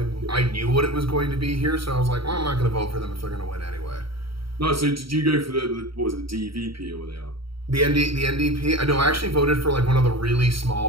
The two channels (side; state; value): left; late; 0.75 ms